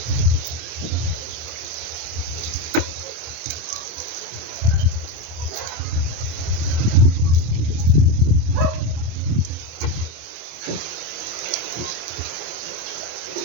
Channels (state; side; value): late; left; 26 ms